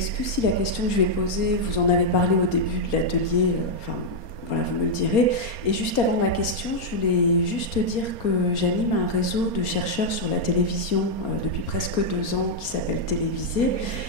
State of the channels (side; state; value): right; late; 4.3 ms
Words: si la question que je vais poser, vous en avez parlé au début de l'atelier, voilà, vous me le direz. Et juste avant ma question, je voulais juste dire que j'anime un réseau de chercheurs sur la télévision depuis presque 2 ans qui s'appelle Télévisé,